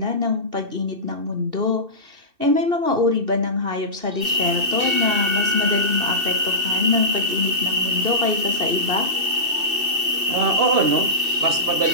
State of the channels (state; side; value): late; left; 2.7 ms